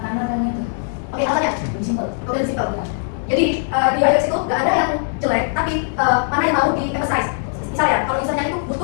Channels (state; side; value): silent; right; 56 dB below the other